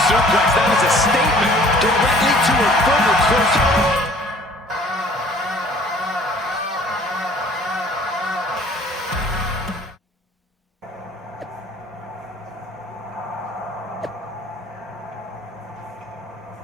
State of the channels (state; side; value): normal; both; correlation 0.53